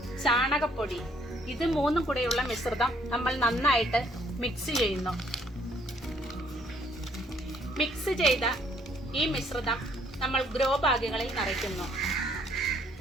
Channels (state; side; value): normal; both; correlation 0.65